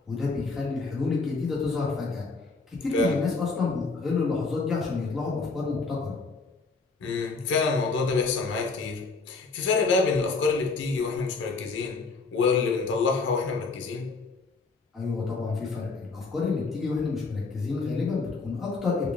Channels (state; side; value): quieter; right; 4.1 dB